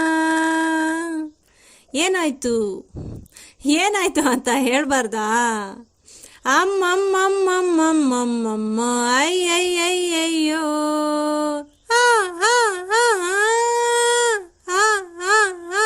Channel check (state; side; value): identical; both; correlation 1.00